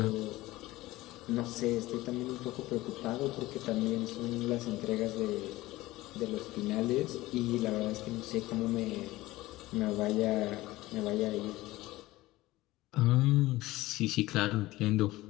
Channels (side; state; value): right; quieter; 18.2 dB